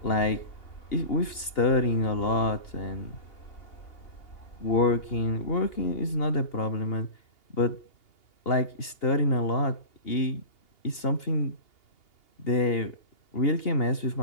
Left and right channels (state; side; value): late; right; 2.8 ms